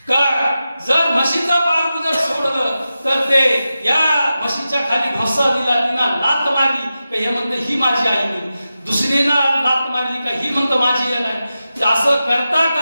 का जर म्हशीचं पारडू जर सोडलं तर ते या म्हशीच्या खाली ढोसा दिला, तिला लात मारली का हे म्हणते ही माझी आई नाही, दुसरीला लात मारली का ही म्हणतं माझी आई नाही. असं करता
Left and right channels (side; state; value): both; inverted; correlation -0.92